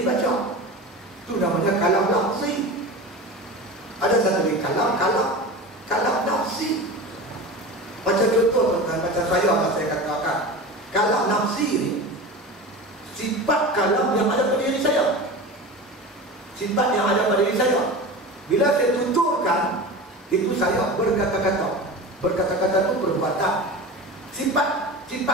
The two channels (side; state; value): both; normal; correlation 0.30